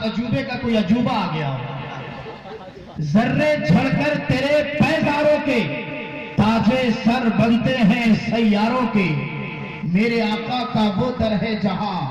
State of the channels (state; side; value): identical; both; correlation 1.00